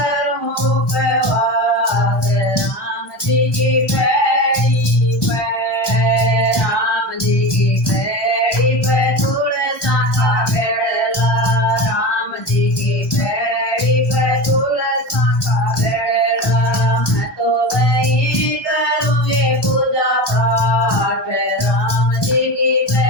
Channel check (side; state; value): right; late; 1.2 ms